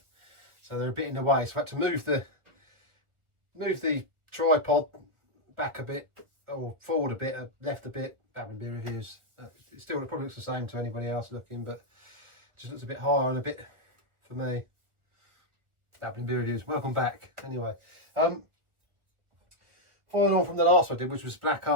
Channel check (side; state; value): left; late; 1.2 ms